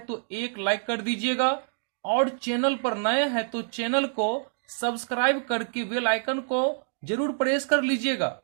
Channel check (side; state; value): left; silent; digital silence